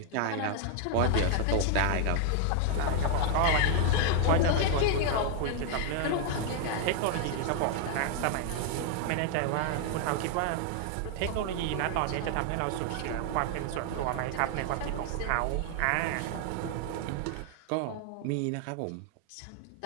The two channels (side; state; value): both; different; correlation 0.00